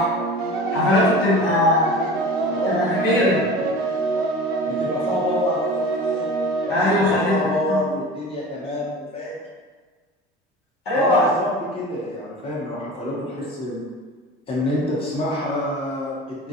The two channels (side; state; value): both; normal; correlation 0.36